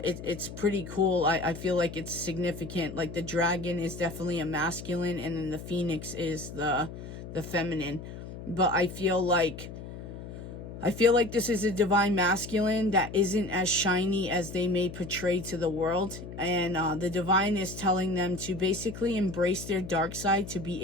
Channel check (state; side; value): noise; left; hum, 11 dB below the sound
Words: pretty cool. I feel like it's significant. Like the dragon is definitely a masculine, and then the phoenix is the feminine. But I feel like this is a divine masculine that isn't as shiny as they may portray to the world. And the divine is telling them to basically embrace their dark side to be